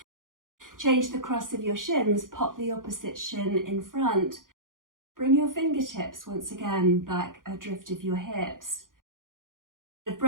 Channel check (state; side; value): late; left; 0.90 ms